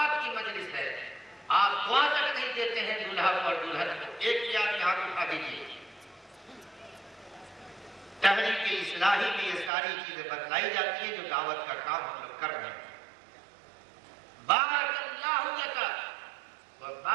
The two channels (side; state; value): left; drops out; at 9.7 s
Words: کی مجلس ہے. آپ دعا تک نہیں دیتے ہیں دولہا کو اور دلہن کو. ایک بھی آدمی ہاتھ اٹھا دیجیے. تحریک اصلاحی میں یہ ساری چیزیں بتلائی جاتی ہیں جو دعوت کا کام ہم لوگ کر رہے ہیں. بارک اللہ لک